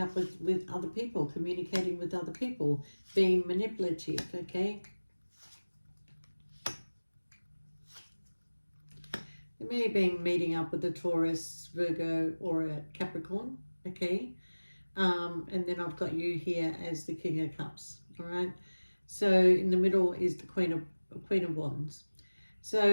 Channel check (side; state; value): both; inverted; correlation -1.00